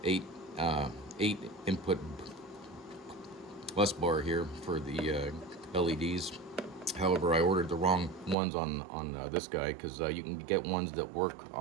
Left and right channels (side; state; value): left; drops out; at 8.3 s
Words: 8 input bus bar here for the LEDs. However, I ordered the wrong ones on this guy, because you can get ones that work